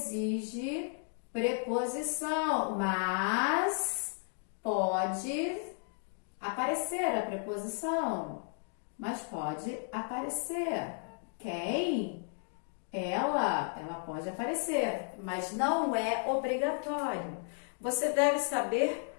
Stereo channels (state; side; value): silent; right; 55 dB below the other